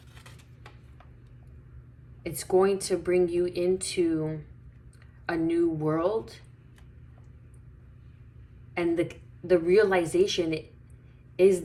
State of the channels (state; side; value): identical; both; correlation 1.00